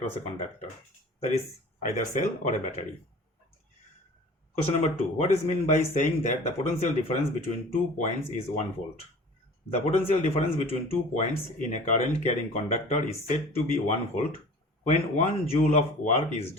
a conductor. That is either cell or a battery. Question number 2. What is meant by saying that the potential difference between 2 points is 1 volt? The potential difference between 2 points in a current carrying conductor is said to be 1 volt when 1 joule of work is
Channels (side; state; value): both; normal; correlation 0.43